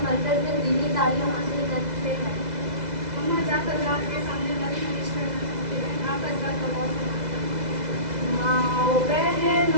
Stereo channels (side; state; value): left; late; 2.0 ms